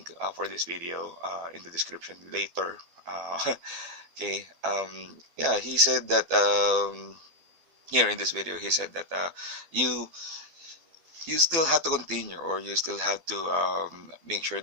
for this video in the description later. Okay. Yeah, he said that here in this video, he said that you you still have to continue, or you still have to make sure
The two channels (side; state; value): left; late; 12 ms